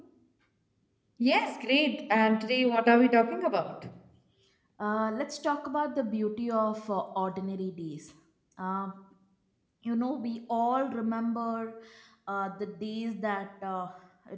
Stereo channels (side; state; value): both; identical; correlation 1.00